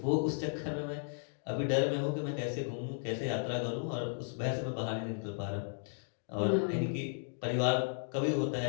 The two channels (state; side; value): silent; right; digital silence